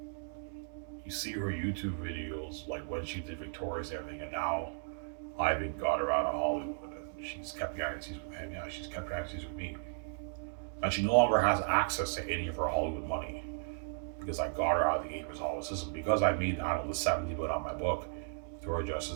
You see her YouTube videos, like when she did Victoria's and everything, and now Ivan got her out of Hollywood, and she's kept galaxies with him. Yeah, she's kept galaxies with me, and she no longer has access to any of her Hollywood money because I got her out of the Gatekeepers Hall system because I made, I don't know, the 70 billion on my book. Victoria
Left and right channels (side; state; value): left; silent; digital silence